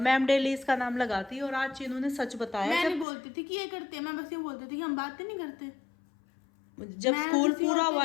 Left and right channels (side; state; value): right; drops out; at 3.1 s